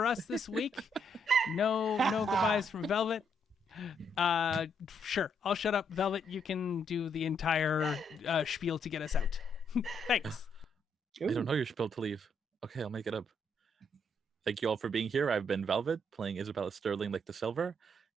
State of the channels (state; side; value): normal; both; correlation 0.74